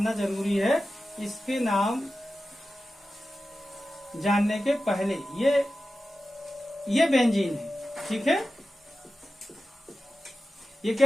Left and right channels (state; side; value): normal; both; correlation 0.93